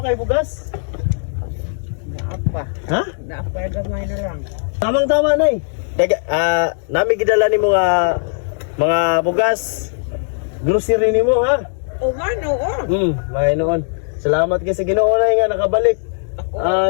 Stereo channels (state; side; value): silent; right; 67 dB below the other